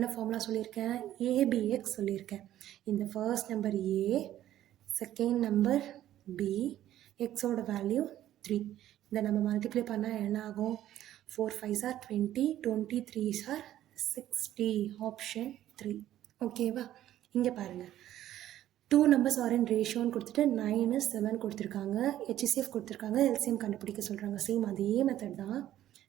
ஃபார்முலா சொல்லியிருக்கேன்? ஏபிஎக்ஸ் சொல்லியிருக்கேன். இந்த first number a, second number b, எக்ஸோட வேல்யூ 3. இதை நம்ம மல்டிப்ளை பண்ணால் என்ன ஆகும்? 4 5s are 20, 20 3s are 60. Option 3. ஓகேவா? இங்கே பாருங்கள், 2 numbers are in ரேஷியோன்னு கொடுத்துட்டு 9 7 கொடுத்துருக்காங்க. HCF கொடுத்துருக்காங்க. எல்சிஎம் கண்டுபிடிக்க சொல்கிறாங்க. சேம் அதே மெத்தட் தான்.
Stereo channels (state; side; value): quieter; left; 12.7 dB